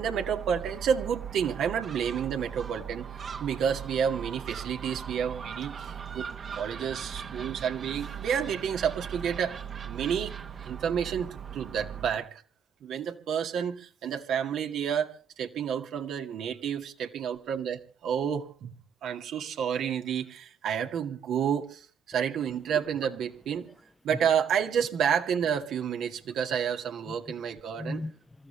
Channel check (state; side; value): quieter; left; 7.5 dB